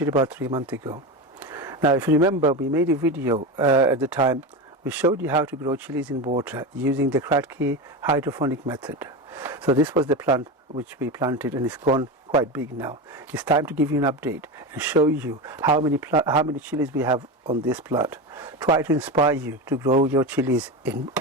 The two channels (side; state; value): both; normal; correlation 0.20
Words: about 3 months ago. Now if you remember, we made a video at the time. We showed you how to grow chilies in water using the Kratky hydroponic method. So this was the plant which we planted and it's gone quite big now. It's time to give you an update and show you how many chilies we have on this plant. Try to inspire you to grow your chilies in